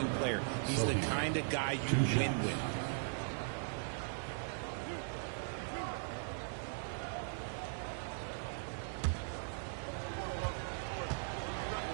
player. He's the kind of guy you win with.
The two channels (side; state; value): left; silent; 52 dB below the other